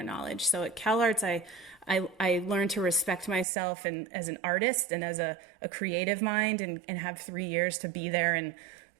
knowledge. So at CalArts, I learned to respect myself and as an artist and as a creative mind, and have 3 years to be there and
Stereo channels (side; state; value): left; drops out; at 3.5 s